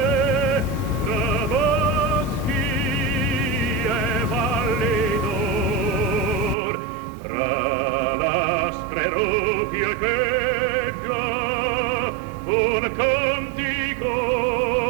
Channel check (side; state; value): left; drops out; at 6.6 s